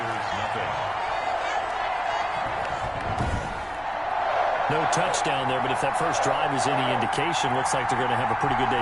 No touchdown there, but if that first drive is any indication, looks like they're going to have a pretty good day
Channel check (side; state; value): both; identical; correlation 1.00